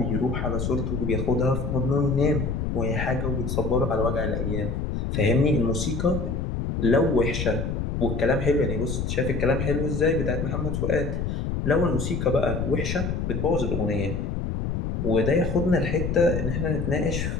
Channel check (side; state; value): left; noise; rumble, 2 dB below the sound